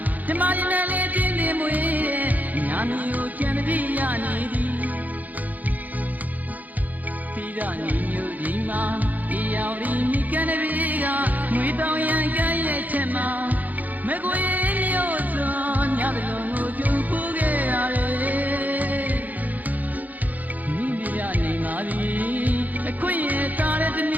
ဓမ္မရနဲ့လေးတင်းနေမွေးညာမျိုးကျန်တည်းရနေသည်သီရညီညွတ်ဒီမှာဒီရောက်ဒီမိကန်တဲ့ဘေးကငွေတောင်ရန်ကဲရဲ့ချက်မှာမကွေမျိုးစွန်ညတလုံးကိုကျူပူခဲ့ရတယ်မိမိရနေပါပြီအခွင့်ရတာတဲ့ဒီန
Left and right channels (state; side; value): late; left; 0.081 ms